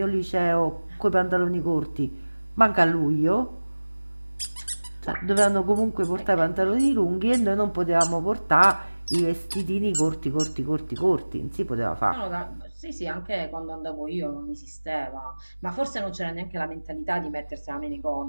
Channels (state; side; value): inverted; both; correlation -1.00